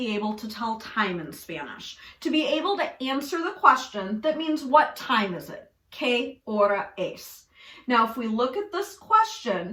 able to tell time in Spanish. To be able to answer the question that means what time is it? ¿Qué hora es? Now if we look at this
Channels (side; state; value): both; identical; correlation 1.00